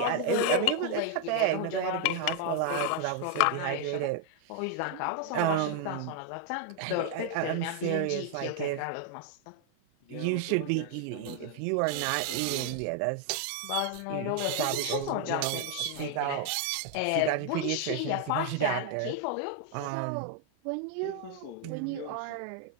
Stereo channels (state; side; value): different; both; correlation 0.00